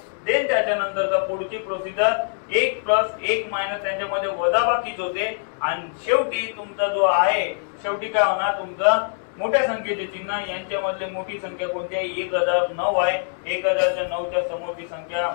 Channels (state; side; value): silent; right; 63 dB below the other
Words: देन त्याच्यानंतरचा पुढची प्रोसिजर 1 प्लस 1 मायनस त्यांच्यामध्ये वजाबाकीच होते आणि शेवटी तुमचा जो आहे शेवटी काय होणार? तुमचा मोठ्या संख्येचे चिन्ह यांच्यामधले मोठी संख्या कोणती आहे? 1009 आहे. 1009च्या समोरची संख्या